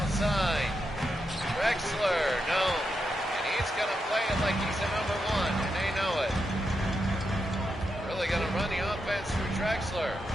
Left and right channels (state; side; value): normal; both; correlation 0.85